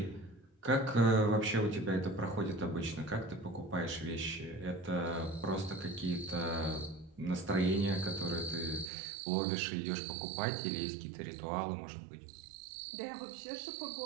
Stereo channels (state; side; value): drops out; left; at 8.9 s